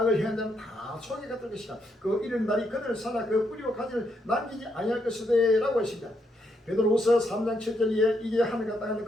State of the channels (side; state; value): both; normal; correlation 0.77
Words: 악을 행한 자는 다 소에게 같을 것이다. 그 이른 날이 그들을 살아 그 뿌리와 가지를 남기지 아니할 것이되 라고 했습니다. 베드로후서 3장 7절에 이제 하늘과 땅은